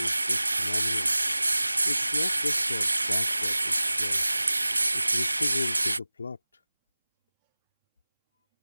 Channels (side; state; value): both; inverted; correlation -0.99